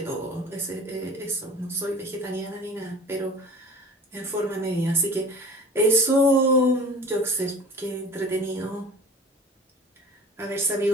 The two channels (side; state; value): both; normal; correlation 0.41